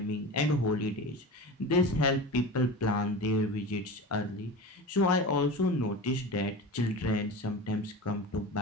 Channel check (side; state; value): both; normal; correlation 0.31